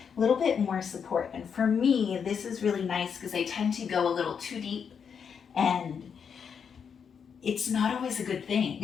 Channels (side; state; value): right; quieter; 6.9 dB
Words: a little bit more support. And for me, this is really nice because I tend to go a little too deep, and it's not always a good